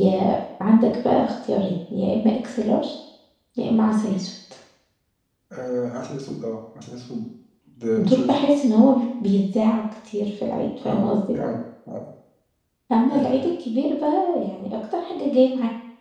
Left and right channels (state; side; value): identical; both; correlation 1.00